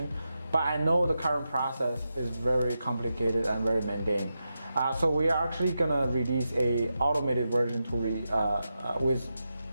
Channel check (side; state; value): both; inverted; correlation -0.89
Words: but I know the current process is very complicated and very mundane. So we are actually gonna release a automated version with